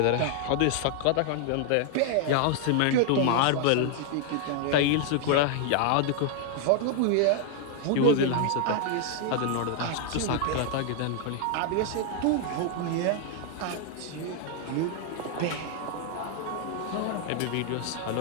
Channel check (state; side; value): different; both; correlation 0.00